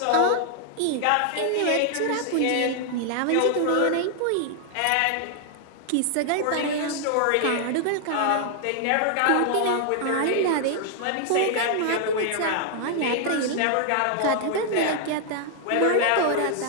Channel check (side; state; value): both; different; correlation 0.00